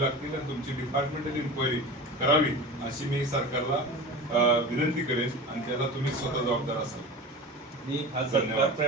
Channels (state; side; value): normal; both; correlation 0.32